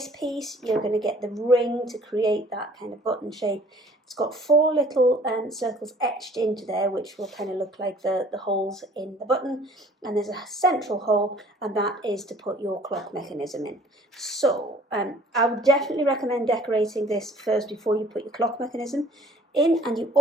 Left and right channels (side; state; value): both; normal; correlation 0.54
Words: piece, you're going to get the ring to create that kind of button shape. It's got 4 little circles etched into there, which will kind of look like the holes in the button. And there's a central hole, and that is to put your clock mechanism in. So I would definitely recommend decorating this first before you put your clock mechanism in, and you